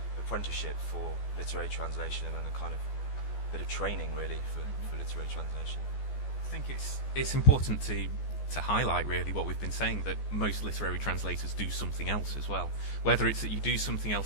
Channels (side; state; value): right; late; 14 ms